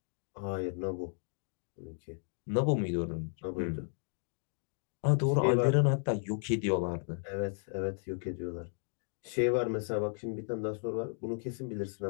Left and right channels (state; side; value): silent; right; 55 dB below the other